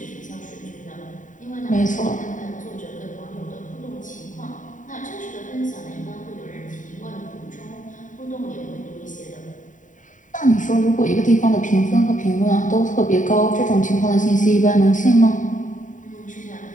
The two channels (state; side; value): late; right; 0.37 ms